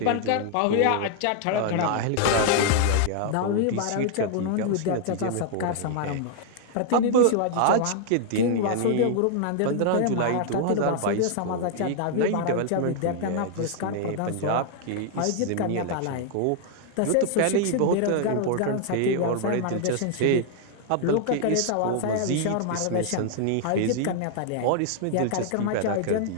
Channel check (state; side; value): different; both; correlation 0.00